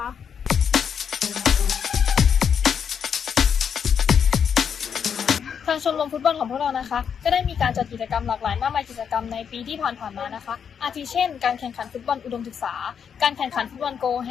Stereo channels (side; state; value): right; quieter; 7.4 dB